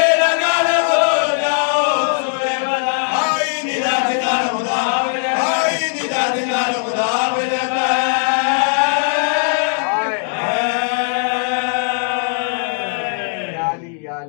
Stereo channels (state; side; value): silent; right; digital silence